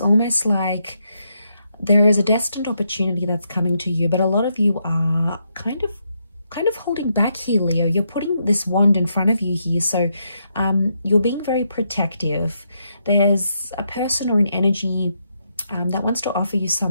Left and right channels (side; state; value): both; inverted; correlation -0.79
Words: like there is a destined opportunity that's coming to you, but a lot of you are kind of holding back here, Leo. You're putting this wand in front of you here, so you're being very protective. There's a person or an energy that wants to offer you